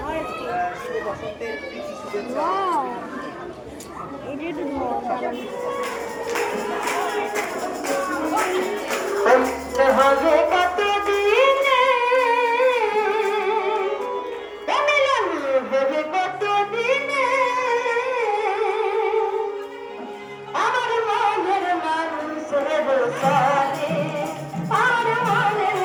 শুভ বসন্তের প্রীতি শুভেচ্ছা। হবে কত দিনে হবে কত দিনে আমার মনের মানুষের সানে, আমার মনের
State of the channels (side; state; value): both; identical; correlation 1.00